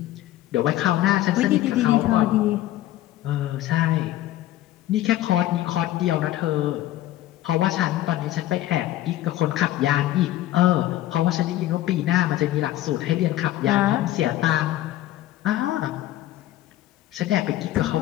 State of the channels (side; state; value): right; quieter; 14.3 dB